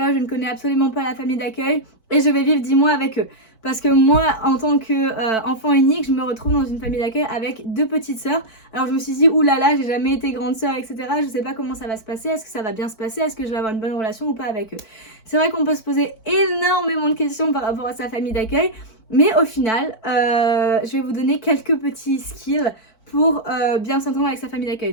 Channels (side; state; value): right; late; 4.5 ms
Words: je ne connais absolument pas la famille d'accueil et je vais vivre 10 mois avec eux. Parce que moi, en tant qu'enfant unique, je me retrouve dans une famille d'accueil avec 2 petites sœurs. Alors je me suis dit, oulala, j'ai jamais été grande sœur, etc. Je sais pas comment ça va se passer, est-ce que ça va bien se passer, est-ce que je vais avoir une bonne relation ou pas avec eux. C'est vrai qu'on peut se poser énormément de questions par rapport à sa famille d'accueil. Mais au final, je vais vous donner quelques petits skills pour bien s'entendre avec sa famille d'accueil.